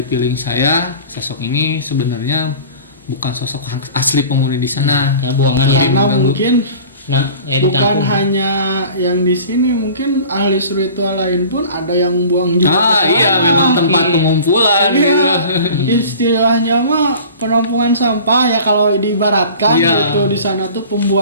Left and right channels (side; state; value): both; inverted; correlation -0.42